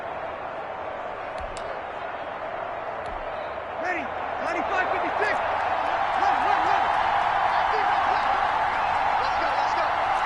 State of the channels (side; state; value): both; identical; correlation 1.00